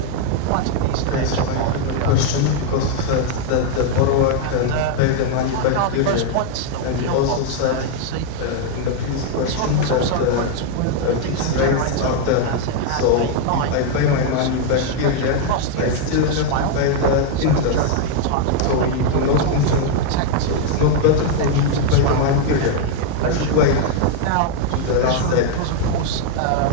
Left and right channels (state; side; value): different; both; correlation 0.00